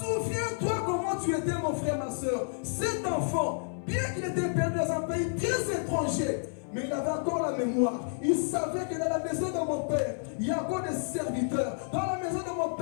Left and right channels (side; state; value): right; silent; 58 dB below the other